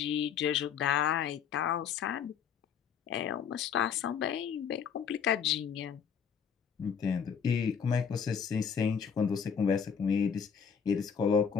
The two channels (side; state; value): right; quieter; 7.1 dB